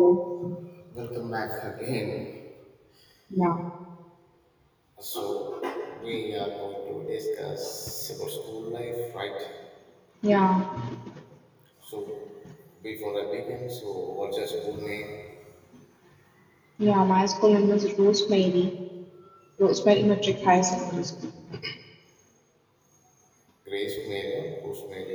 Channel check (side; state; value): both; identical; correlation 1.00